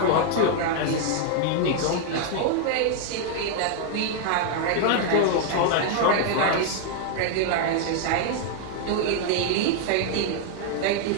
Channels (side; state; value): both; different; correlation 0.00